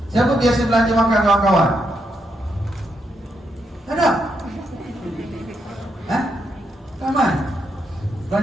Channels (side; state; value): both; normal; correlation 0.80